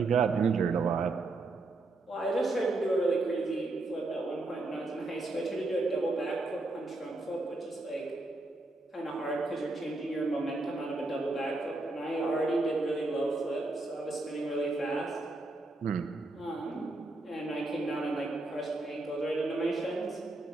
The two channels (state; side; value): quieter; left; 3.1 dB